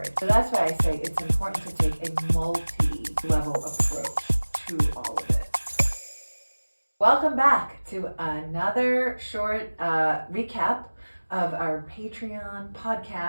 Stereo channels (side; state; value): both; inverted; correlation -1.00